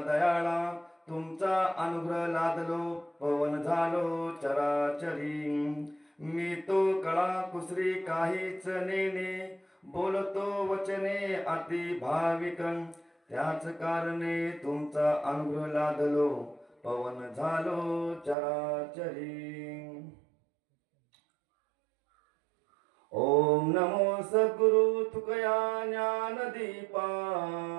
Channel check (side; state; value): left; drops out; at 18.4 s